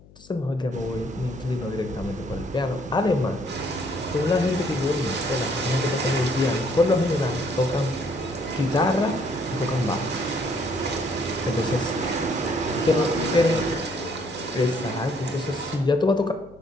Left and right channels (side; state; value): left; noise; hum, 24 dB below the sound